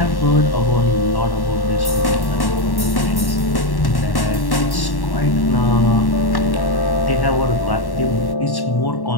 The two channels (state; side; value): late; right; 1.1 ms